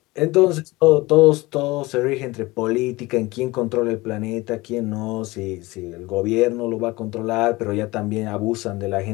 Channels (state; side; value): quieter; right; 21.3 dB